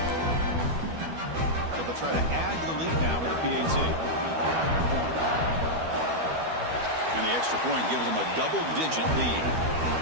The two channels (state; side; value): late; left; 12 ms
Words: So they'll try to add to the lead now with the PAT. And the extra point gives them a double-digit lead.